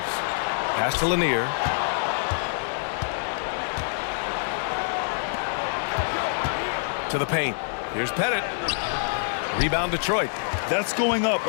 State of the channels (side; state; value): right; silent; 61 dB below the other